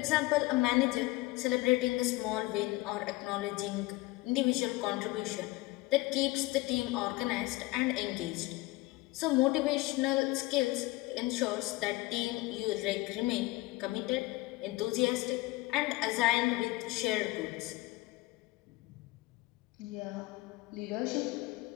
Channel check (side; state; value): right; quieter; 20.8 dB